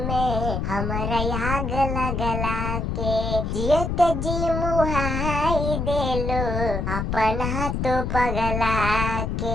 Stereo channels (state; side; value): noise; left; rumble, 1 dB below the sound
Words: में हमारा आग लगला के जियत जी मुहाई देलो अपना तो पगला के